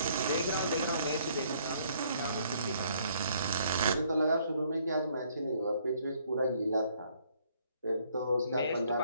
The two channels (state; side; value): inverted; both; correlation -0.65